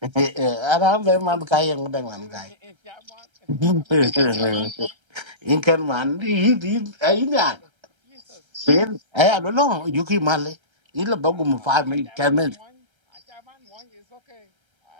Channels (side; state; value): left; late; 1.3 ms